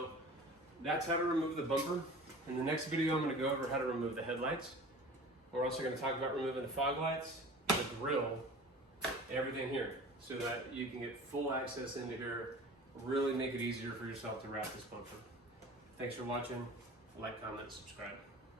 that's how to remove the bumper. In the next video, I'm going to go over how to remove the headlights. We're also going to talk about removing the fog lights, the grill, everything here, so that you can get full access into here, really make it easier for yourself to wrap this bumper. Thanks for watching. Like, comment, subscribe.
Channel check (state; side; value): normal; both; correlation 0.40